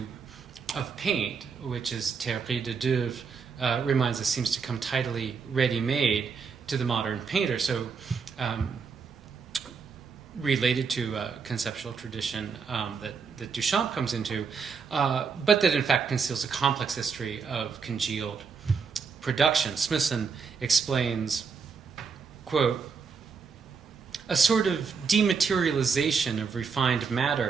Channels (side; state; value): left; quieter; 5.6 dB